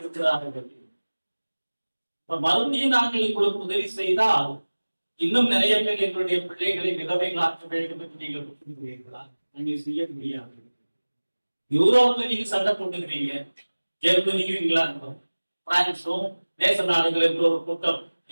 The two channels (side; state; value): both; inverted; correlation -1.00